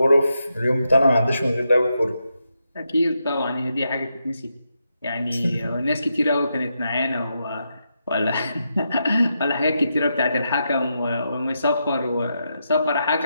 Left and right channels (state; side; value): inverted; both; correlation -0.84